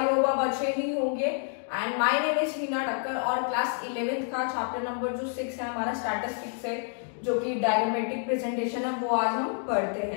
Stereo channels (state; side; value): silent; right; 56 dB below the other